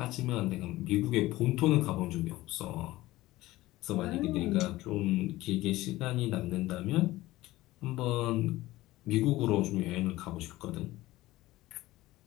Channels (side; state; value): right; quieter; 17.6 dB